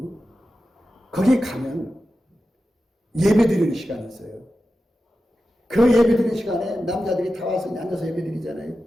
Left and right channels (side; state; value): both; normal; correlation 0.92